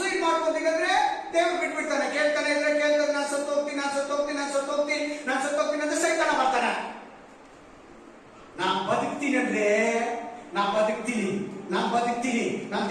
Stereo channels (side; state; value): both; identical; correlation 1.00